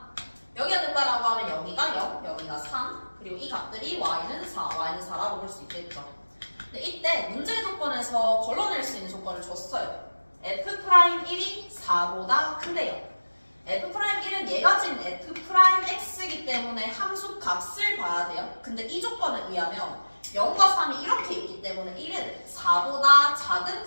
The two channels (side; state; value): both; inverted; correlation -1.00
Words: 여기가 된다라고 하면 여기가 0, 여기가 3. 그리고 이 값들이 y는 4, y는 4라고 볼 수 있겠죠. 근데 이때 문제 조건에서 걸러낼 수 있는 조건을 줬어요. f'1이 4보다 큰데요. f'1은 얘가 지금 f'x이기 때문에 함수 값을 봐야 돼요. 근데 이 조건에 의하면 0과 3이 이렇게 있기 때문에 1은 4보다 작은